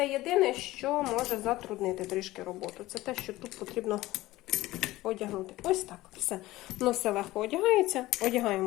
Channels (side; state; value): right; quieter; 17.6 dB